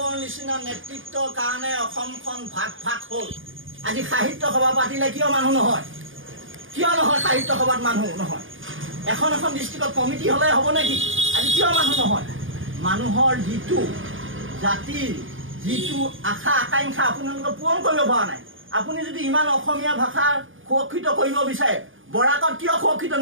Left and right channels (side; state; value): left; late; 0.58 ms